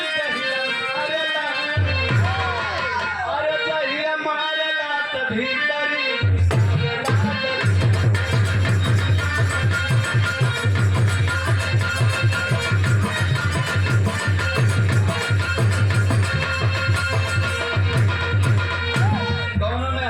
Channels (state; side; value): identical; both; correlation 1.00